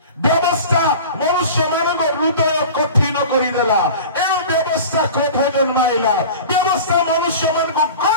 ବ୍ୟବସ୍ଥା ମନୁଷ୍ୟମାନଙ୍କ ହୃଦୟ କଠିନ କରିଦେଲା। ଏଣୁ ବ୍ୟବସ୍ଥା କ୍ରୋଧ ଜନ୍ମାଇଲା। ବ୍ୟବସ୍ଥା ମନୁଷ୍ୟମାନଙ୍କୁ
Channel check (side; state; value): both; inverted; correlation -0.37